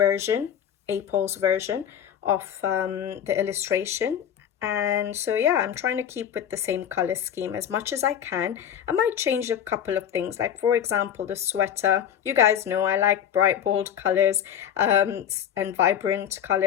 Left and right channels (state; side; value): quieter; right; 9.4 dB